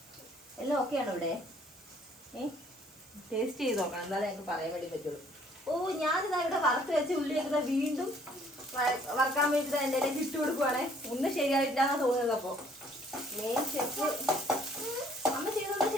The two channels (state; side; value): normal; both; correlation 0.61